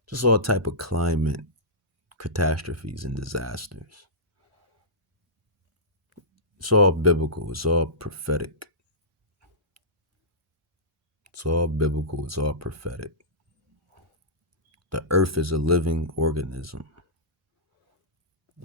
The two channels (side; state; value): both; normal; correlation -0.18